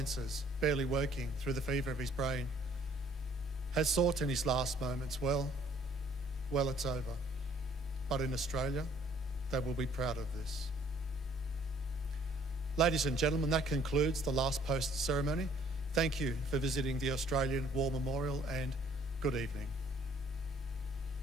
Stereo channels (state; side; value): normal; both; correlation 0.59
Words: barely working through the fever of his brain has thought in his last moments, well, it's over. But in Australia, they will be proud of this. Ladies and gentlemen, that concludes the last post ceremony Thank you for visiting the Australian War Memorial and good evening.